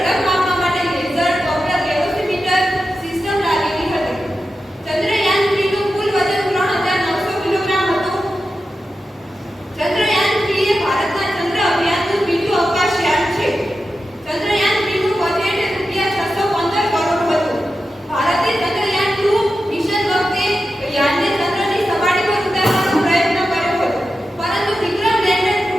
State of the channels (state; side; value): normal; both; correlation 0.91